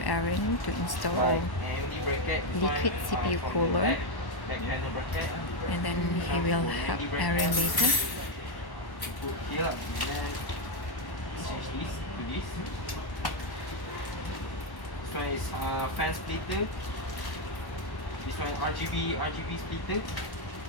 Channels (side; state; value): right; late; 1.1 ms